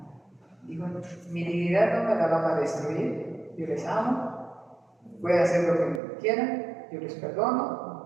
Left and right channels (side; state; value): left; drops out; at 6.0 s